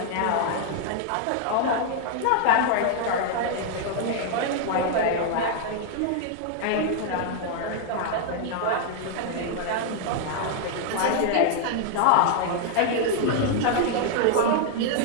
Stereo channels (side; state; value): both; different; correlation 0.00